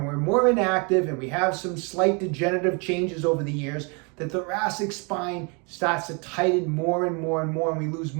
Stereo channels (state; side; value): quieter; left; 33.2 dB